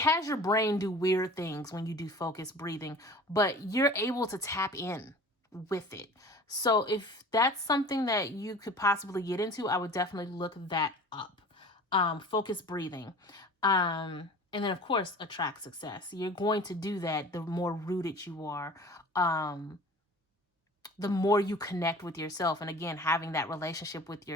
your brain do weird things when you do focused breathing, but you're able to tap in with it. So if that's something that you could possibly get into, I would definitely look that up. Focused breathing. And then, of course, attract success. You're going to do that the more rooted you are, the more you connect with yourself. And again, having that relationship with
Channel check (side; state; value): both; normal; correlation 0.42